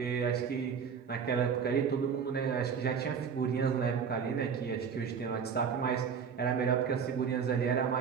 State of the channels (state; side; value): quieter; left; 6.7 dB